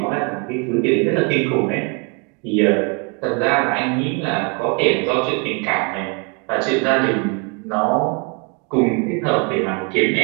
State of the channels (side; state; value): left; quieter; 34.2 dB